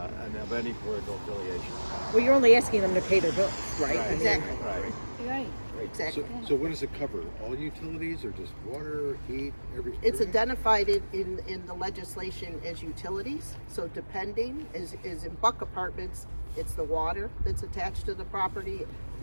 of any political affiliation. Well, you're only asking them to pay their bills, right? Exactly. Right. Right. Exactly. So what does it cover? All utilities or just water, heat, everything? It's identified in the legislation as utilities. So depending, is in Buck Apartments, it's the water that's attached to the property.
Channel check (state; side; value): inverted; both; correlation -1.00